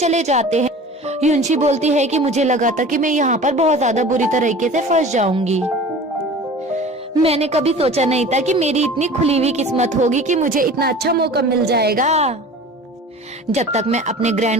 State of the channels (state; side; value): normal; both; correlation 0.40